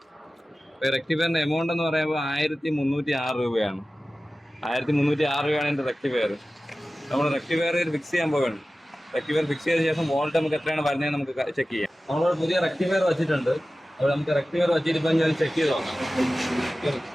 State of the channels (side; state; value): both; normal; correlation 0.96